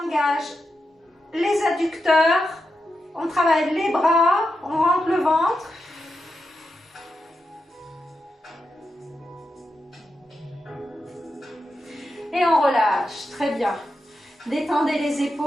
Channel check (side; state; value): both; normal; correlation 0.88